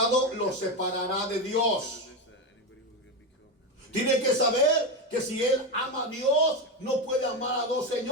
lo separará de Dios. this, that anybody who's going to be covenant, Tiene que saber que si él ama a Dios, no puede amar a dos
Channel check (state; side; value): normal; both; correlation 0.13